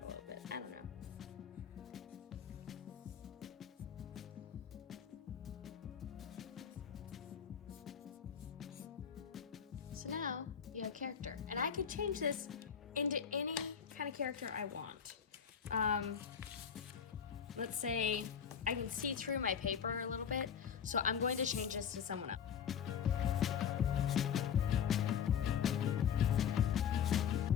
little bit. I don't know. So now you have character. And I could change this into any kind of character I want. Let's say I can see through my paper a little bit, so I'm going to change this to someone else.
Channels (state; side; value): quieter; right; 7.7 dB